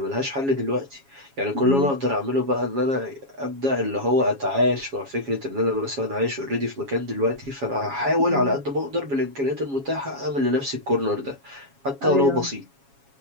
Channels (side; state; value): left; late; 7.3 ms